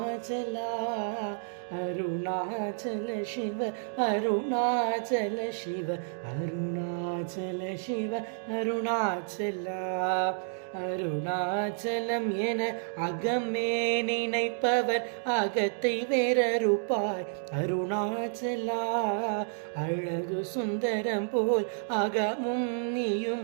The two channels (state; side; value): silent; left; digital silence